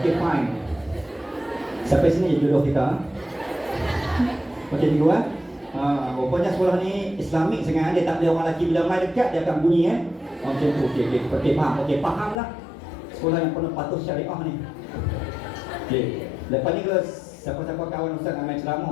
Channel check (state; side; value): drops out; right; at 12.4 s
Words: fine. Sampai sini je jodoh kita. Okey cikgu rupanya sekolah ni Islamik sangat, dia tak boleh orang lelaki bila mai dekat dia akan bunyi macam tu. Okey faham. Okey faham lah. Sekolah yang penuh patuh syariah ni. Okey. Lepas ni kalau siapa-siapa kawan Ustaz nak main ceramah,